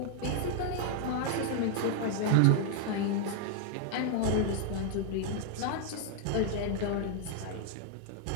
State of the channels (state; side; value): different; both; correlation 0.00